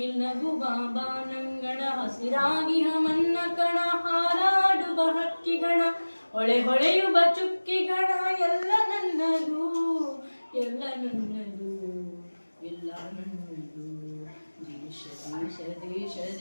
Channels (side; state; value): both; inverted; correlation -1.00